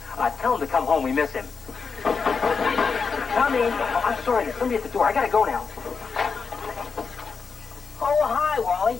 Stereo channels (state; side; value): quieter; right; 5.3 dB